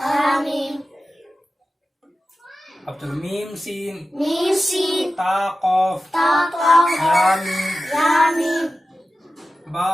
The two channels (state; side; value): normal; both; correlation 0.94